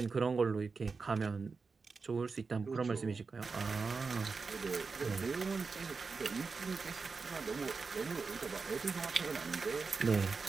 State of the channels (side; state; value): left; quieter; 4.6 dB